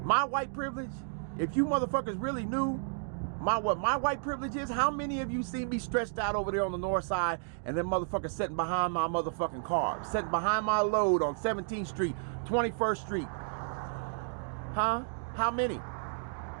if you motherfuckers really knew what my white privilege is, how many of you see me stretched out over there on the north side and then motherfuckers sitting behind my motherfucking car, sitting behind my load on 17th Street, 21st Street? Huh? How many?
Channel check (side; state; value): left; silent; digital silence